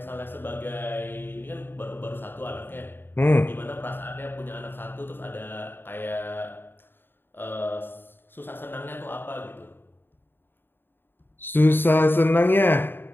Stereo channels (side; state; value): right; late; 0.099 ms